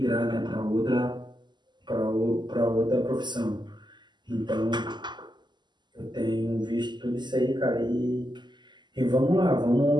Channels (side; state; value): left; late; 0.21 ms